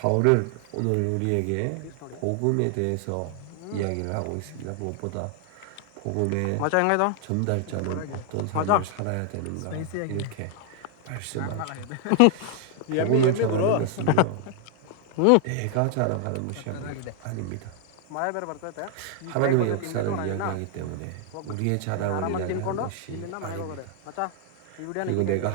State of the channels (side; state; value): both; different; correlation 0.00